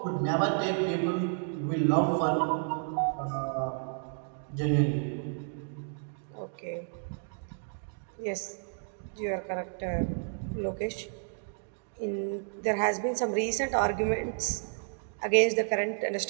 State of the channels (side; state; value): left; silent; 56 dB below the other